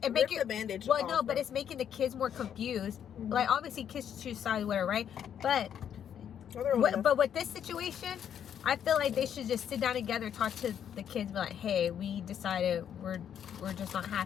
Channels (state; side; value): quieter; right; 9.0 dB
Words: bandage well, off, no, but it's making the kids more confused. Like, obviously kids choose sides, whatever, right? But with this situation, I feel like they should just sit down together, talk to the kids, be like, hey, we decided we're just not